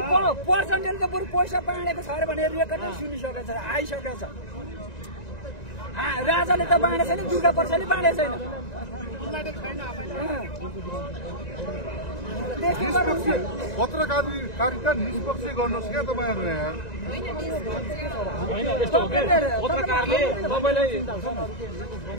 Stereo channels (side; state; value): right; late; 1.9 ms